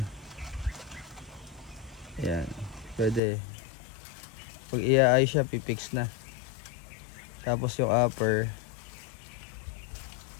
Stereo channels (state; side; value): drops out; right; at 3.2 s